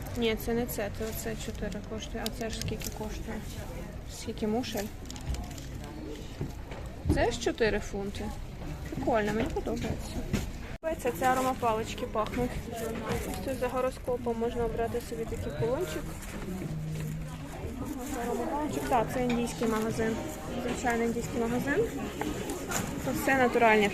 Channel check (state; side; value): identical; both; correlation 1.00